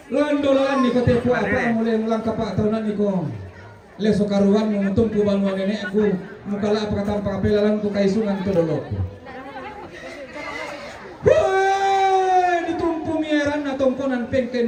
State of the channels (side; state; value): both; identical; correlation 1.00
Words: Landolan ni katepu apa mulai mulang kapa atau nani ko. Leso karuan menguntung kubanuan nenekku mukala apa kata pakapelalan ku kaisungan itu dolok. Ditumpu mieran na tongkonan